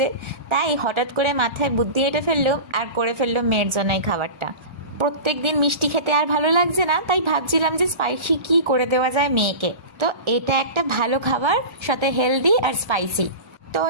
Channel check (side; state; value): left; late; 1.4 ms